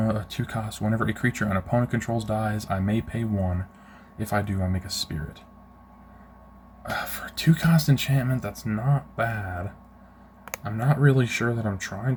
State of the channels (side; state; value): both; identical; correlation 1.00